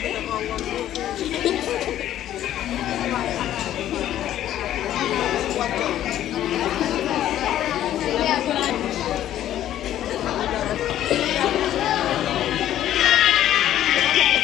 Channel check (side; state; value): right; quieter; 12.1 dB